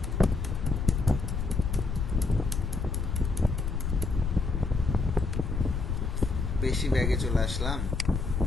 বেশি ব্যাগে চলে আসলাম।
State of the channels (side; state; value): left; noise; rumble, 2 dB below the sound